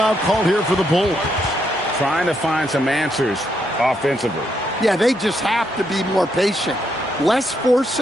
called here for the Bulls. Trying to find some answers offensively. Yeah, they just have to be more patient. Less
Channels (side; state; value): both; normal; correlation 0.77